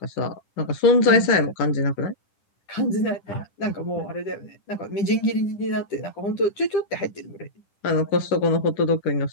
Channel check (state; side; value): late; right; 10 ms